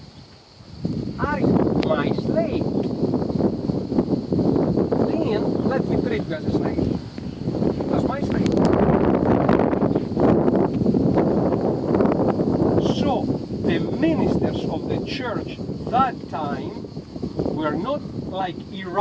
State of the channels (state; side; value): identical; both; correlation 1.00